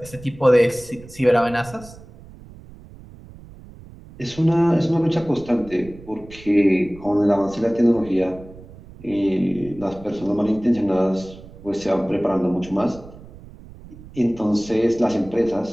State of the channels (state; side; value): noise; right; rumble, 19 dB below the sound